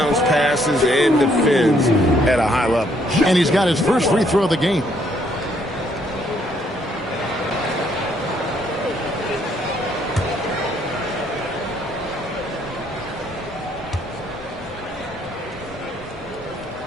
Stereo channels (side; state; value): both; normal; correlation 0.69